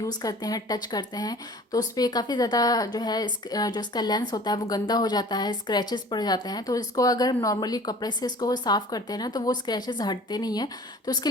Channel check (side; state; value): both; normal; correlation 0.46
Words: करते हैं, टच करते हैं, तो उस पर काफ़ी ज़्यादा जो है जो इसका लेंस होता है वो गंदा हो जाता है, स्क्रैचेस पड़ जाते हैं। तो इसको अगर नॉर्मली कपड़े से इसको साफ़ करते हैं ना तो वो स्क्रैचेस हटते नहीं हैं। तो उसके